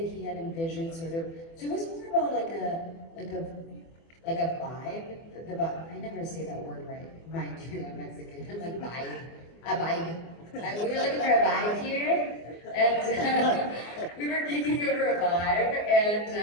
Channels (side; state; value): right; late; 24 ms